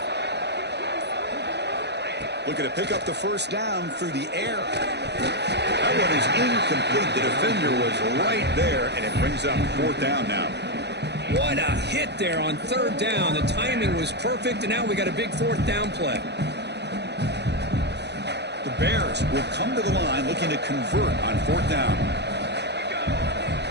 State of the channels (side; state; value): left; late; 0.50 ms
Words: Looking to pick up the first down through the air. That one is incomplete. The defender was right there, and it brings up fourth down now. What a hit there on third down. The timing was perfect, and now we got a big fourth down play. The Bears will come to the line looking to convert on fourth down.